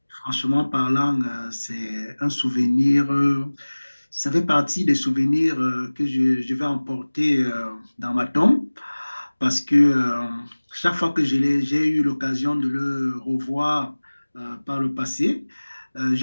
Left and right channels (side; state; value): both; inverted; correlation -1.00